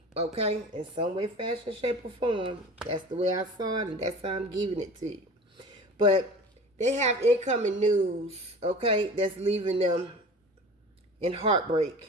okay, in some way, fashion, shape, or form. That's the way I saw it, and that's how I'm giving it to you. But they have incoming news, okay, that's leaving them in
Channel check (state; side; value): normal; both; correlation 0.39